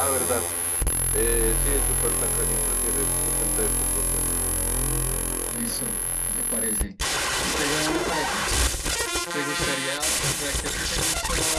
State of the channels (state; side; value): identical; both; correlation 1.00